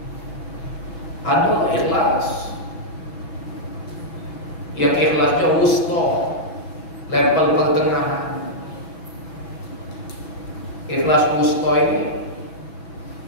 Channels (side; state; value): right; late; 6.1 ms